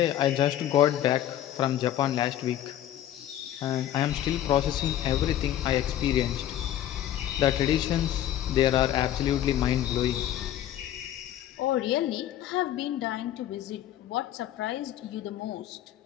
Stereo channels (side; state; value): right; quieter; 11.8 dB